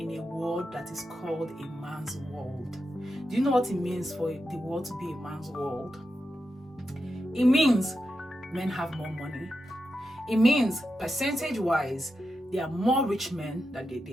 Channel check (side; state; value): both; normal; correlation 0.88